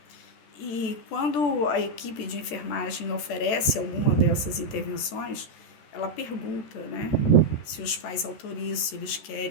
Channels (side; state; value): right; late; 14 ms